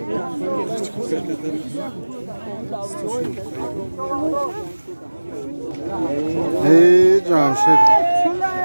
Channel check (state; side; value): inverted; both; correlation -1.00